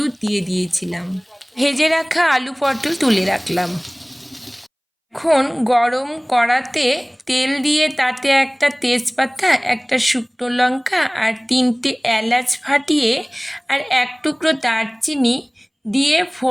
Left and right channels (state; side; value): identical; both; correlation 1.00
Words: দিয়ে দিয়েছিলাম। ভেজে রাখা আলু পটল তুলে রাখলাম। এখন গরম কড়াতে তেল দিয়ে তাতে একটা তেজপাতা, একটা শুকনো লঙ্কা আর 3টে এলাচ ফাটিয়ে আর এক টুকরো দারচিনি দিয়ে